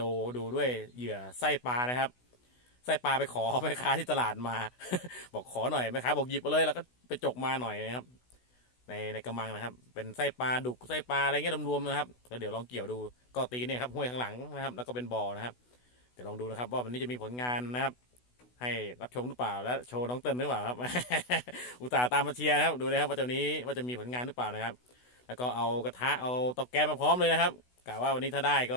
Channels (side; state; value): right; late; 16 ms